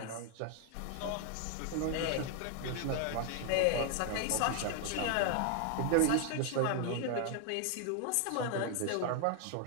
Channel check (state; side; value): different; both; correlation 0.00